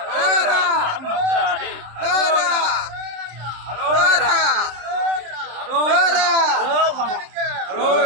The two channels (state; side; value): late; left; 27 ms